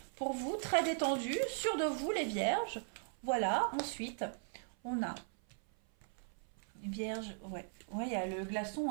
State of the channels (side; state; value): left; silent; 52 dB below the other